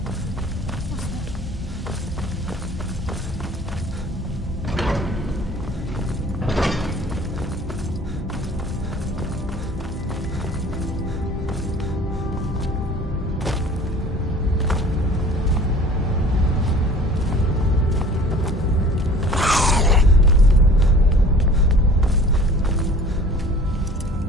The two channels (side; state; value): both; normal; correlation 0.47